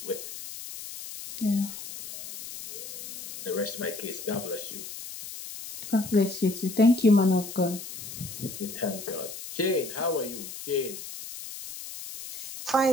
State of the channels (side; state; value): left; noise; hiss, 10 dB below the sound